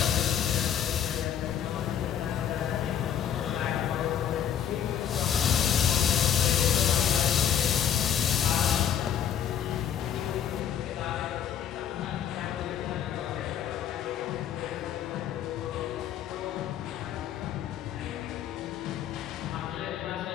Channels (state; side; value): quieter; right; 9.3 dB